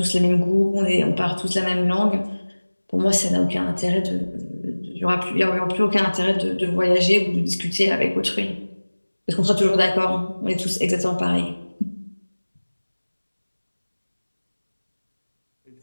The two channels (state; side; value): inverted; both; correlation -1.00